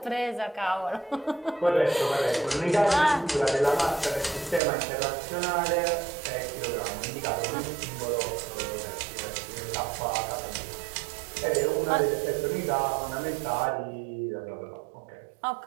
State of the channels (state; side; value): drops out; left; at 4.6 s